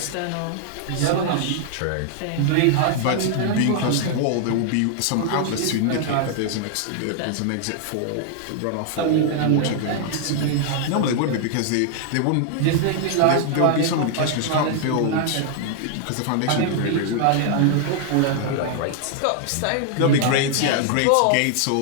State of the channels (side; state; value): both; different; correlation 0.00